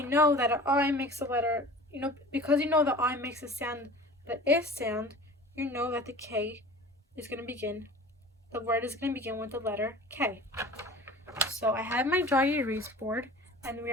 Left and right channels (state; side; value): normal; both; correlation 0.40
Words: know that an I makes a letter, because you know the I makes a sound, the I sound, you know that the K is going to begin. The word is going to begin with the letter K. So I have my dry erase board, and we